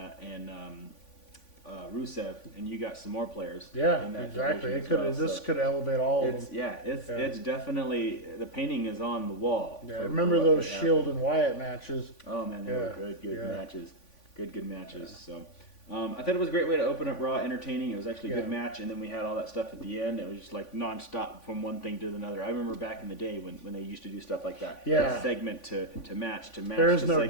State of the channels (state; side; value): late; right; 3.5 ms